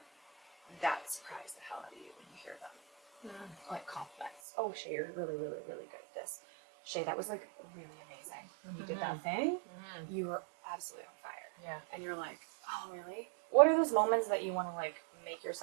that surprise the hell out of you when you hear them? Like compliments. Oh, Shea, you're really, really, really good at this. Shea, that was like really amazing. When you did that thing, you were absolutely on fire. Yeah. And you're like, oh, really? What are those moments that you want to like make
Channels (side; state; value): left; drops out; at 4.3 s